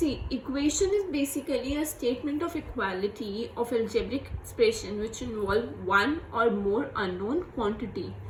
equation is basically a statement of equality of algebraic expression which involve one or more unknown quantity.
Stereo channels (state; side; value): identical; both; correlation 1.00